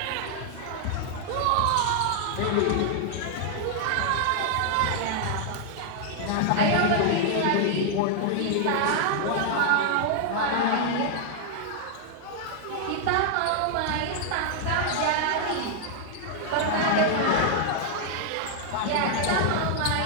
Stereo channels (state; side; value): different; both; correlation 0.00